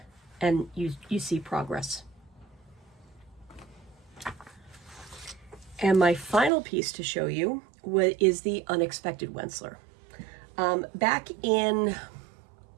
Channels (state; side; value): drops out; left; at 6.5 s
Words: and you see progress. And my final piece to show you is the Unexpected Wensler. Back in,